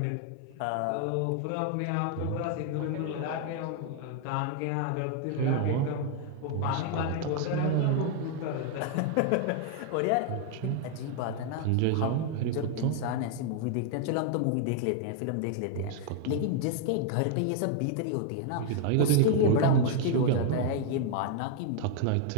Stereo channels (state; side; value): different; both; correlation 0.00